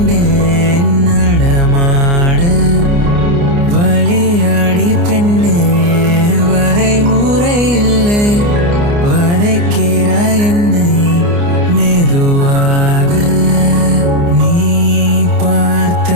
நடமாட வழியாடி பெண்ணே வரைமுறை இல்லை வதைக்கிறாய் என்னை மெதுவாக நீ பார்த்த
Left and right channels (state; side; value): late; left; 29 ms